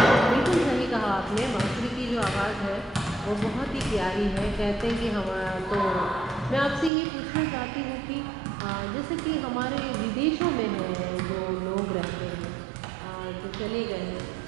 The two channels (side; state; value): left; drops out; at 6.9 s